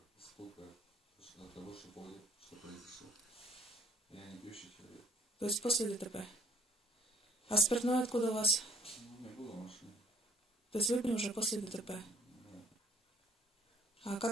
сколько от того, что понял, что произошло. Я не пьющий человек. То есть после ДТП. А спиртное откуда у вас? Ну, не было в машине. То есть выпили уже после ДТП. Да. А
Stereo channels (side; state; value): both; normal; correlation 0.60